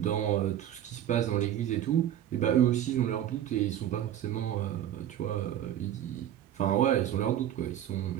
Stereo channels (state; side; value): quieter; left; 11.1 dB